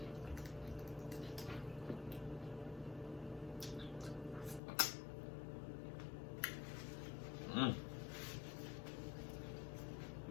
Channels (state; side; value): drops out; right; at 4.6 s